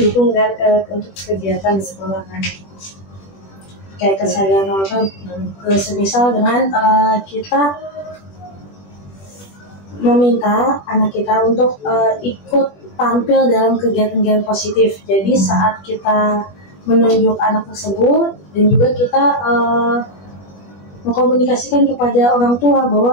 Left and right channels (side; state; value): right; late; 21 ms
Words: kan untuk kegiatan di sekolah kan. Kayak kesadaran orang semisal dengan kita meminta anak kita untuk ikut tampil dalam kegiatan-kegiatan positif. Jadi saat kita menunjuk anak tersebut dan juga kita mengkomunikasikan kepada orang tua